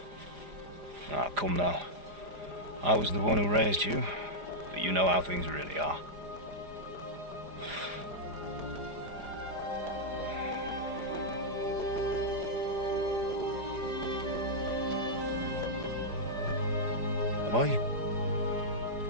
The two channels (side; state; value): left; late; 4.9 ms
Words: Ah, come now. I was the one who raised you, but you know how things really are. Am I?